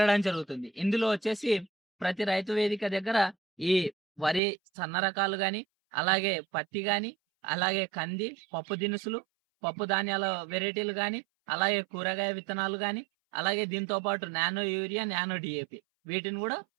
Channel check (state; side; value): drops out; left; at 4.4 s